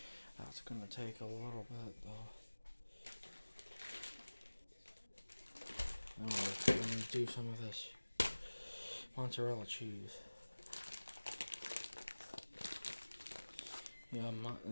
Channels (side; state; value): both; inverted; correlation -1.00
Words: That's gonna take a little bit though. Oh, it's do some of this mozzarella cheese. Yeah,